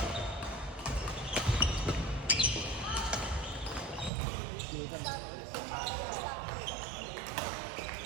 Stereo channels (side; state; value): left; drops out; at 4.1 s